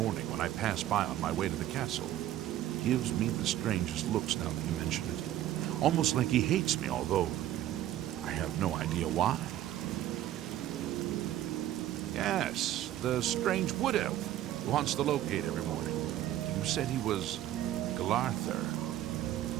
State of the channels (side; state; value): left; quieter; 13.0 dB